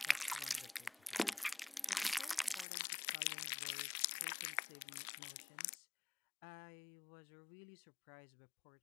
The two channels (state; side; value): drops out; right; at 2.7 s